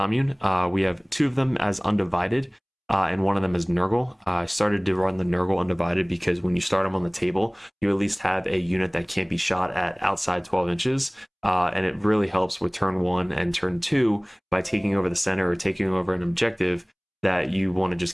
We have 2 of them as Undivided, and one of them is Nurgle. I started to run the Nurgle Undivided because when you start them on the table, you at least have a unit that can't be shot at outside 12 inches. And it really helps with turn 1 and turn 2 by taking over the center or taking over an objective that you want to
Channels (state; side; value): identical; both; correlation 1.00